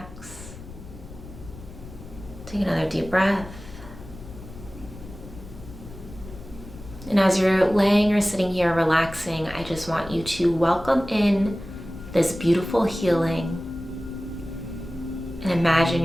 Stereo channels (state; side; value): noise; left; rumble, 15 dB below the sound